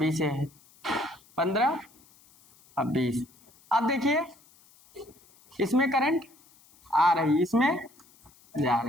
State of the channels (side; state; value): left; noise; hiss, 29 dB below the sound